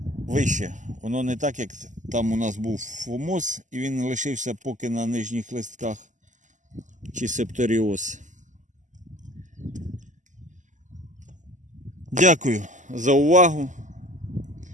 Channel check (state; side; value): late; left; 0.36 ms